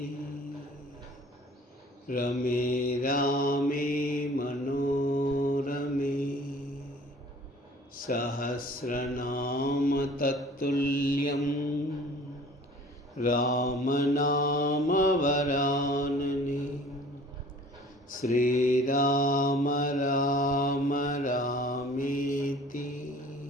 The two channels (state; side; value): normal; both; correlation 0.49